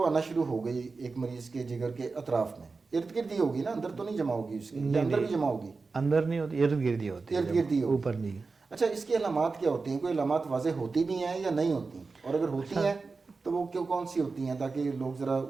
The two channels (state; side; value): quieter; left; 4.2 dB